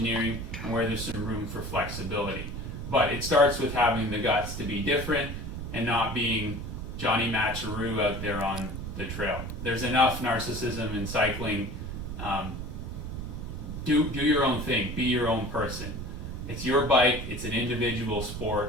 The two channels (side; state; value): right; noise; rumble, 6 dB below the sound